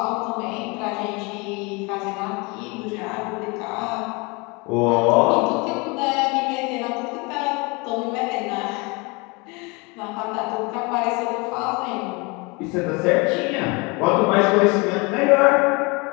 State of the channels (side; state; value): right; quieter; 27.9 dB